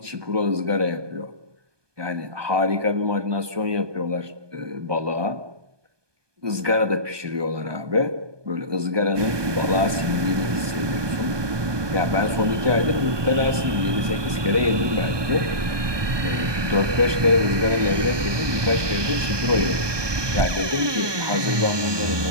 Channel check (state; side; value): late; left; 1.2 ms